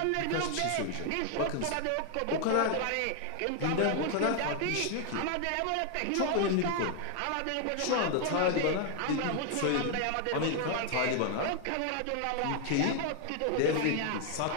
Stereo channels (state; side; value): different; both; correlation 0.00